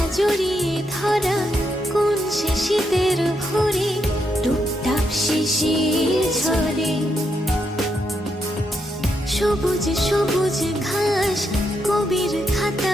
জড়িয়ে ধরা কোন সে শীতের ভোরে টুপটাপ শিশির ঝরে। সবুজ সবুজ ঘাস কবির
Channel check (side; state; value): both; normal; correlation 0.81